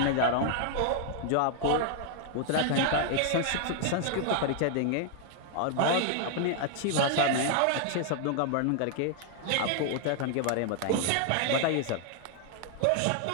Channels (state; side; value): different; both; correlation 0.00